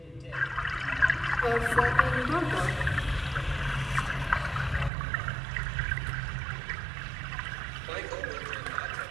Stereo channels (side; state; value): left; drops out; at 4.9 s